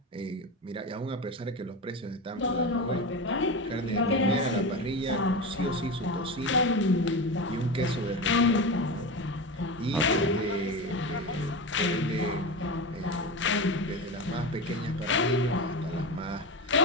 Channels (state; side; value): normal; both; correlation 0.22